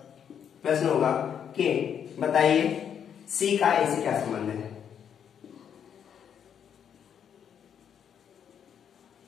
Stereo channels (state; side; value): quieter; right; 8.4 dB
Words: होगा कि बताइए सी का ए से क्या संबंध है?